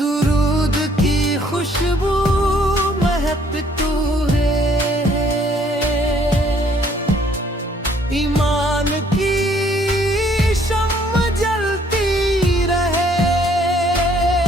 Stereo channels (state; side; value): normal; both; correlation 0.63